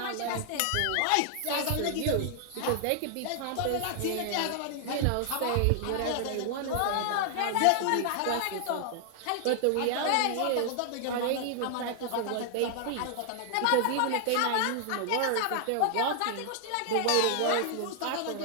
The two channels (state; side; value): different; both; correlation 0.00